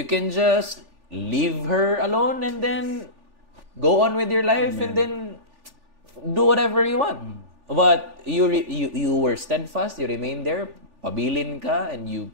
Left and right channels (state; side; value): late; left; 3.4 ms